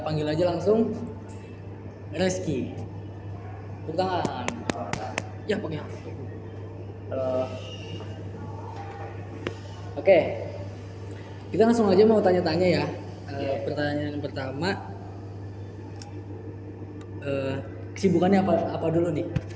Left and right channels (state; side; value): identical; both; correlation 1.00